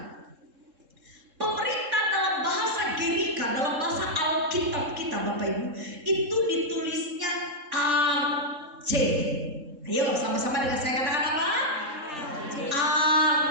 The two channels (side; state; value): left; late; 3.7 ms